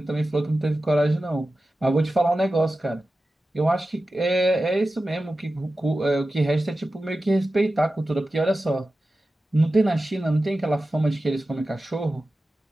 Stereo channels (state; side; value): normal; both; correlation 0.94